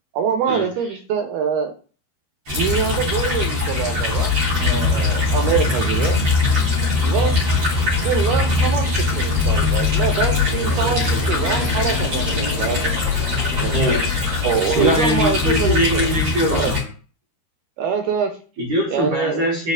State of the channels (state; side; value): late; left; 13 ms